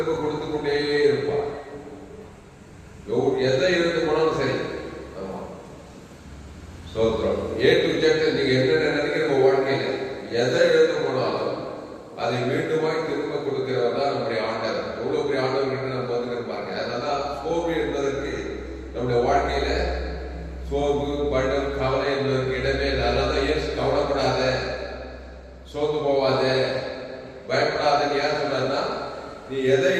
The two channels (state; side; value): identical; both; correlation 1.00